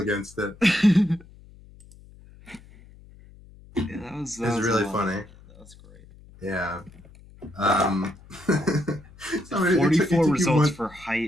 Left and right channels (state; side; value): noise; left; hum, 23 dB below the sound